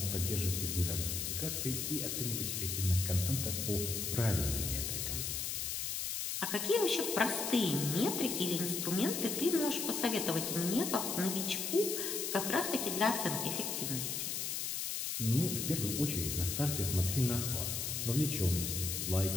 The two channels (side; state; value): left; noise; hiss, 2 dB below the sound